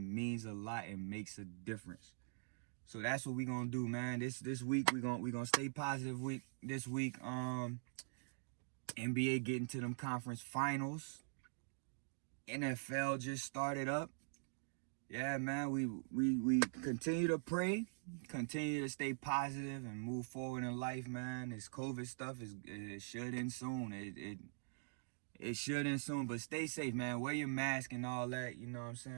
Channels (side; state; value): left; silent; digital silence